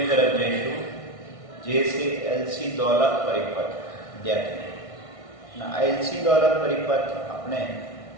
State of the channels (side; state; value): right; late; 1.6 ms